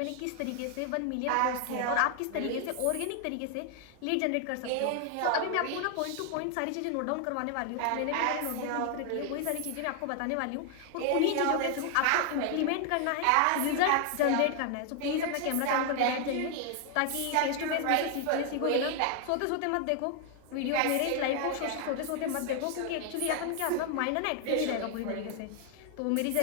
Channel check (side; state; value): both; different; correlation 0.00